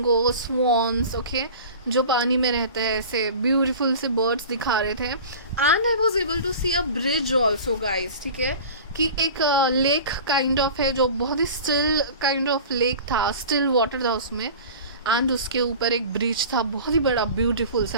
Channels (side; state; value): both; inverted; correlation -0.38